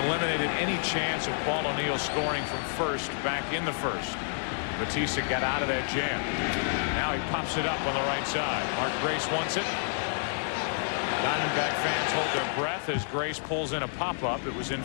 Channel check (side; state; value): right; silent; 58 dB below the other